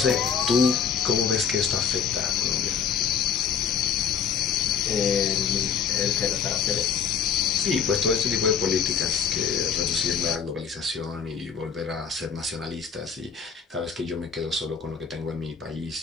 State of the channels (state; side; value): quieter; right; 7.0 dB